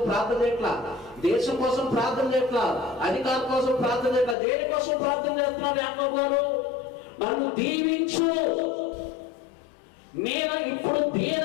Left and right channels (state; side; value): drops out; right; at 4.4 s